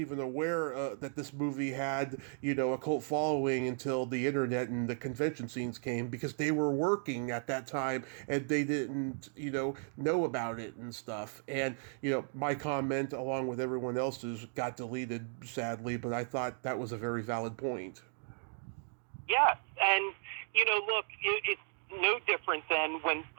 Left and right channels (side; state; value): left; silent; 54 dB below the other